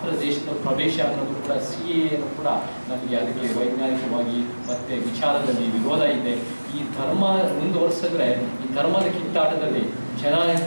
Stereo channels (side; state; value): both; inverted; correlation -1.00